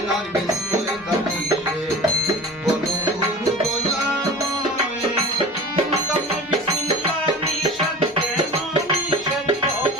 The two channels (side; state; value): both; normal; correlation 0.36